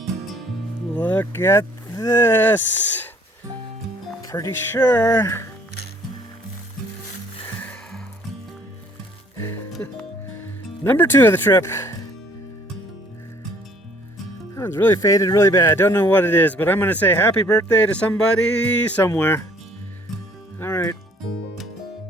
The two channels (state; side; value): normal; both; correlation 0.59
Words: Look at this. Pretty sure. Number 2 of the trip. That one's really faded really bad. Don't know what it is, but I'm going to say happy birthday to somebody somewhere. All right.